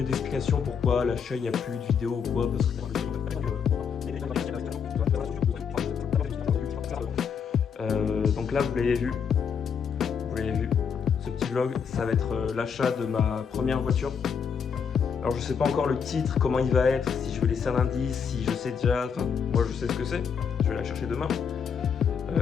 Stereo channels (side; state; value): right; quieter; 6.8 dB